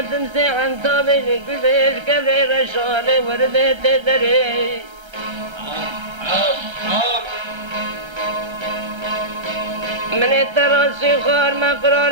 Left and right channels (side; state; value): left; late; 1.3 ms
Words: تمسي عن طابلي كل كبري رشالي وردي تدري من التراسي خار